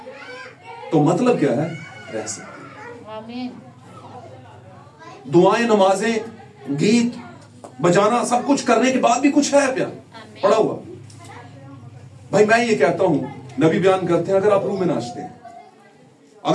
तो मतलब क्या है? रह सकती है। दुआएं, नमाजें, गीत, बजाना सब कुछ करने के बाद भी कुछ है प्यार पड़ा हुआ। भाई मैं ये कहता हूं, नबी बयान करते हैं अगर आप रूह में नाचते हैं,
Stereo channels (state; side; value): identical; both; correlation 1.00